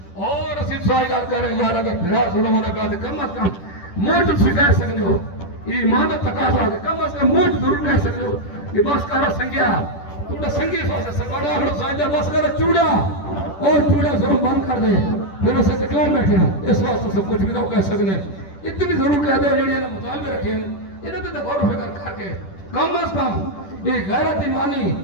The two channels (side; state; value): right; late; 10 ms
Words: اور اسی سوال کر رہے ہیں یار اگر بھرا ظلم ہونے کا کم از کم موٹ سے کہہ سکتے ہو ایمان تقاضا کہ کم از کم موٹ ضرور کہہ سکتے ہو کہ بس کرو سنگیا تھوڑا سنگی سوچے سنگاڑا ہم سانجا بس کرو چوڑا اور چوڑا ضرور بند کر دے پھر اسے تکلان بیٹھے ہیں اس واسطے سب کچھ بھی تو کہہ سکتے ہیں اتنی ضرور کہہ دے جڑی انہیں مطالبے رکھے ہیں انہیں تو غور و فکر کر کے کم از کم یہ غیرت ایمانی